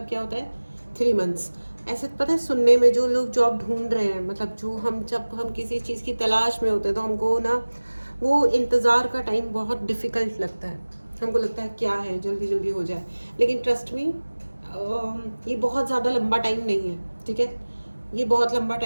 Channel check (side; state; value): both; inverted; correlation -1.00